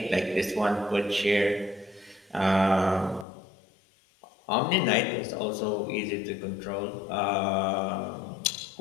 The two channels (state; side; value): drops out; right; at 3.2 s